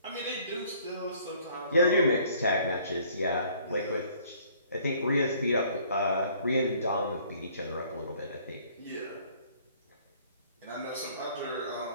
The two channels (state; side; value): inverted; both; correlation -0.59